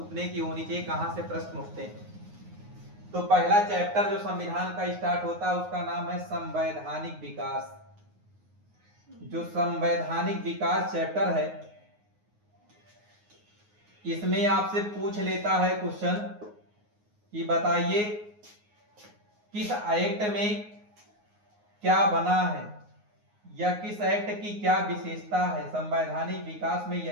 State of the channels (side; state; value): left; late; 9.6 ms